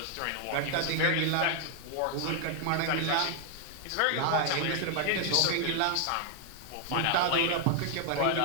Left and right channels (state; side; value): different; both; correlation 0.00